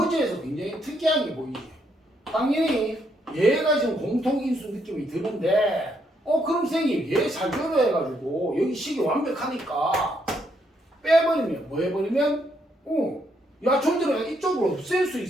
굉장히 특이한 게 보이지. 당연히 얘가 지금 공통인수 느낌이 드는데 그럼 선생님 얘 잘 결여해가지고 여기 식이 완벽하니까 빼버리면 뭐 해버리면 야, 좀 전에 이쪽으로 없앨 수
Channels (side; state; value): both; normal; correlation 0.74